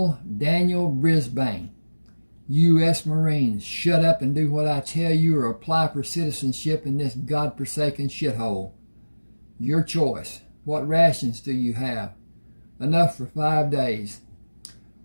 Daniel Brisbane, U.S. Marines. Shut up and do what I tell you or apply for citizenship in this godforsaken shithole. Your choice. What rations do you have? Enough for 5 days.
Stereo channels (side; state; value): both; inverted; correlation -1.00